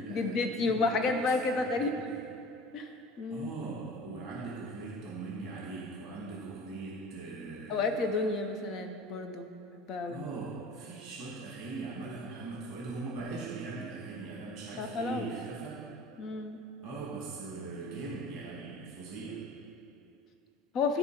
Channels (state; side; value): normal; both; correlation 0.42